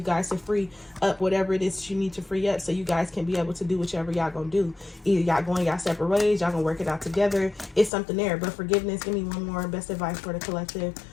to free up whatever it is that you need to free up, so you guys can be able to do whichever y'all gonna do. Either y'all going y'all separate ways, y'all gonna work it out together. It's something there. But forgiveness, give me one more best advice for the collective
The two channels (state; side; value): drops out; right; at 7.9 s